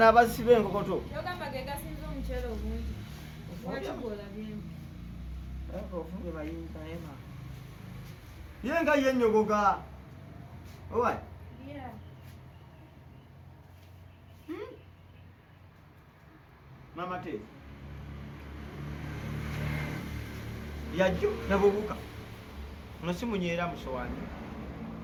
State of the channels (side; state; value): both; identical; correlation 1.00